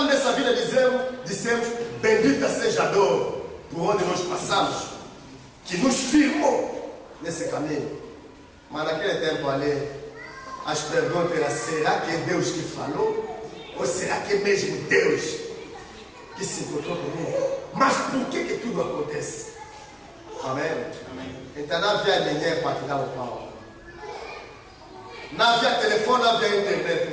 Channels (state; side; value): identical; both; correlation 1.00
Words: nessa vida, dissemos, bendita seja a dor por onde nós passamos, que nos firmou nesse caminho. Mas naquele tempo ali, as perguntas eram, será que é Deus que falou? Ou será que é mesmo Deus que se encontrou comigo? Mas por que tudo acontece? Amém? Amém. Então não havia ninguém para te dar o pau. Não havia telefone, não havia internet.